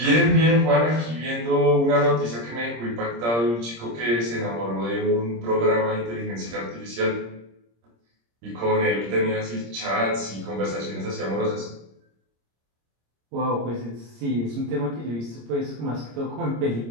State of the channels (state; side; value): late; left; 26 ms